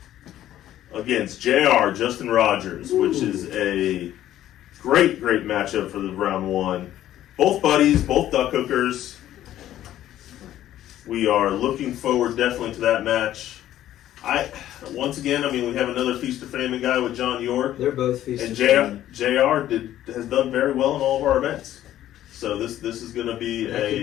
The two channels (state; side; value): quieter; right; 12.7 dB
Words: against JR, Justin Rogers, which is a great matchup for the round one. Both buddies, both duck hookers. We are looking forward definitely to that match. Once again, we have another Feast of Famine guy with John York. They're both Feast and of Famine. JR has done very well in all of our events. So this is going to be that could